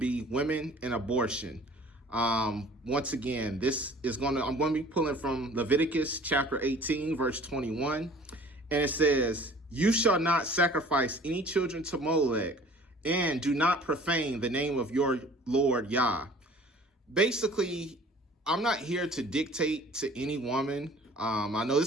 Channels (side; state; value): both; normal; correlation 0.49